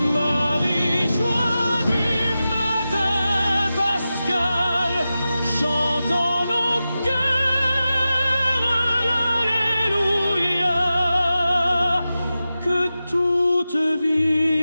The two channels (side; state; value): both; inverted; correlation -0.93